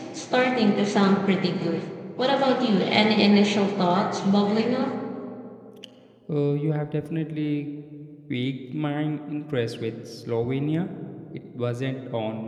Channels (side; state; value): both; identical; correlation 1.00